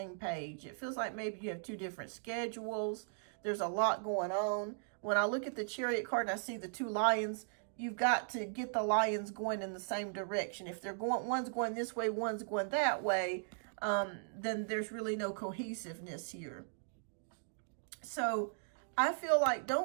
page. It feels like maybe you have two different schedules. There's a lot going on. When I look at the Chariot card and I see the two lions, you've got to get the lions going in the same direction. If they're going, one's going this way, one's going that way, then there's really no cohesiveness here. So I feel like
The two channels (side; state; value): left; silent; digital silence